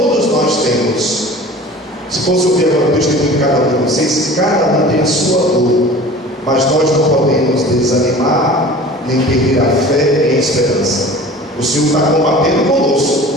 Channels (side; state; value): both; normal; correlation 0.41